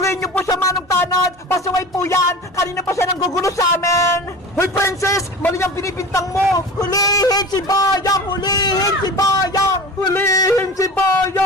niyo po siya, Manong Tanod! Pasaway po yan! Kanina pa siya nanggugulo sa amin! Hoy, Princess! Mali ang pinipintang mo! Hulihin si Boyong! Hulihin si Boyong! Hulihin si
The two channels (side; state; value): both; normal; correlation 0.35